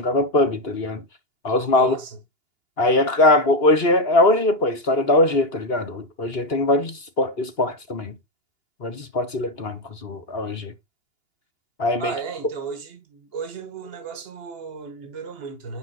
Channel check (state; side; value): late; right; 2.8 ms